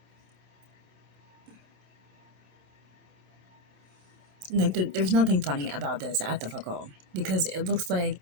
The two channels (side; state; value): left; late; 26 ms